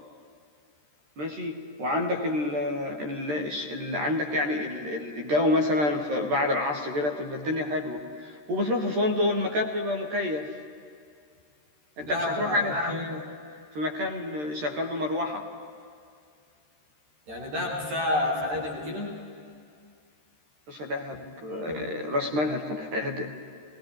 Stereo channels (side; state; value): left; late; 13 ms